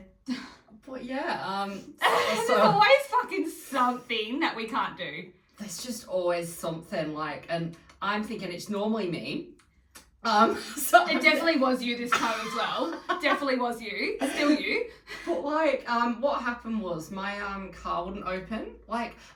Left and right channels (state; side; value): identical; both; correlation 1.00